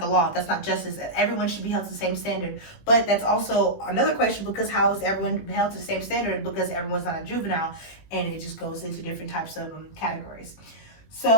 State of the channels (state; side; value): late; right; 18 ms